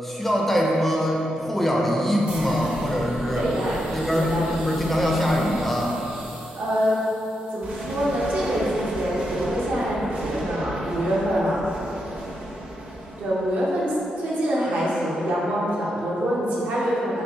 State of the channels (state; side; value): normal; both; correlation 0.84